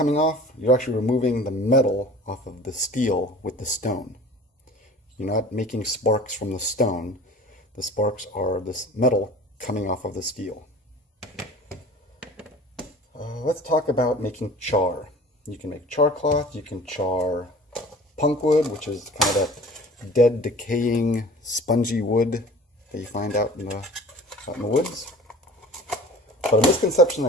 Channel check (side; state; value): both; normal; correlation 0.43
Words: off, you're actually removing the metal off of the steel with the stone. You're not making sparks from the stone. The sparks are this metal coming off of the steel. Let's talk about making char. You can make char cloth, you can char punk wood, which is kind of that dead, decaying, spongy wood that you find out in the woods. But a misconception